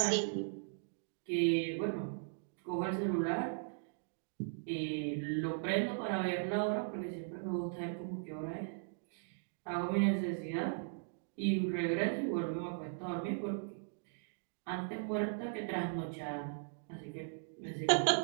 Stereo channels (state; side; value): silent; left; digital silence